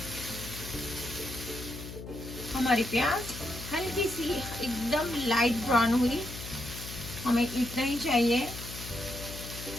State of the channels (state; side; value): noise; left; hum, 11 dB below the sound